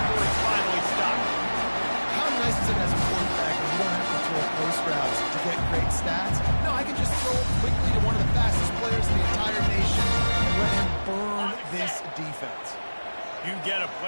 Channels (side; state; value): both; inverted; correlation -1.00